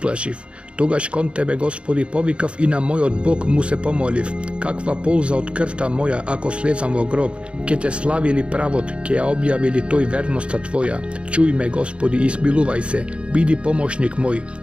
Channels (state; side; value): late; left; 0.058 ms